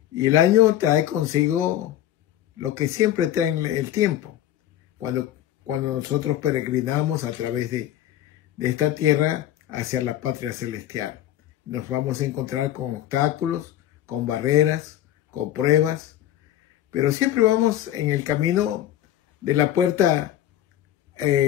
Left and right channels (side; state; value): right; quieter; 12.4 dB